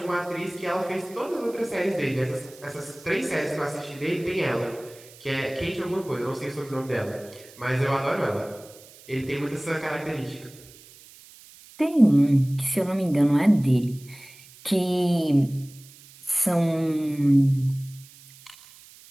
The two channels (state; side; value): noise; right; hiss, 22 dB below the sound